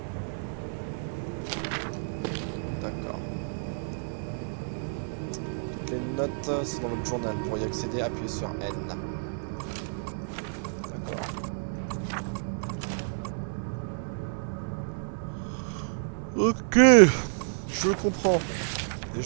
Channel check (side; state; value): left; silent; digital silence